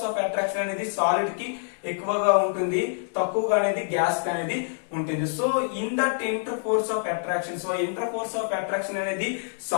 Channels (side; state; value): right; silent; digital silence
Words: of attraction అనేది సాలిడ్ కి ఎక్కువగా ఉంటుంది, తక్కువగా అనేది గ్యాస్ కి అనేది ఉంటుంది. So in that inter force of attraction, so inter force of attraction అనేది